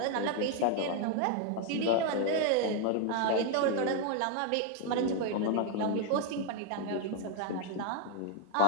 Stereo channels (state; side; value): different; both; correlation 0.00